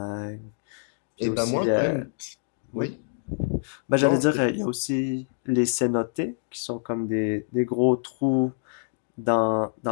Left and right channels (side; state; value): right; silent; digital silence